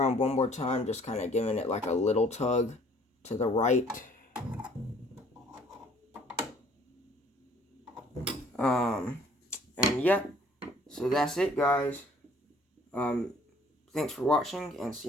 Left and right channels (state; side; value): normal; both; correlation 0.57